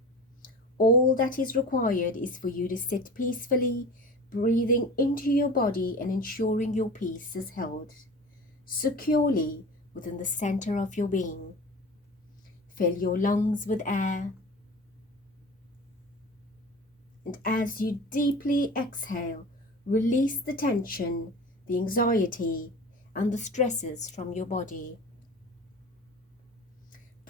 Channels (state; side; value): normal; both; correlation 0.36